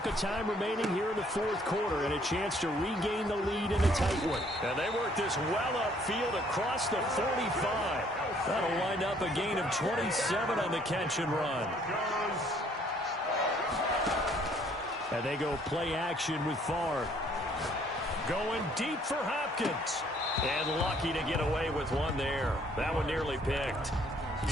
of time remaining here in the 4th quarter and a chance to regain the lead in a tight one. And they work this well upfield across the 45. That'll wind up a gain of 27 on the catch and run. And they go play action with Favre. Going deep for Hopkins. And lucky to get away with one there. That one nearly picked.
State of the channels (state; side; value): normal; both; correlation 0.62